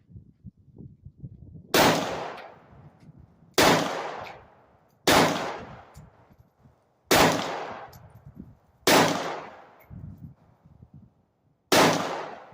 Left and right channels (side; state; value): both; identical; correlation 1.00